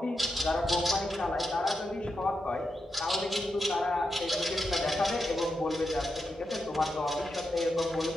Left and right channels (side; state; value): both; normal; correlation 0.86